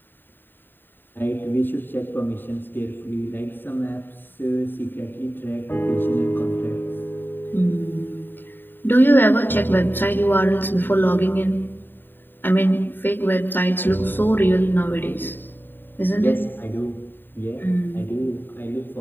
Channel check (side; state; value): right; late; 0.094 ms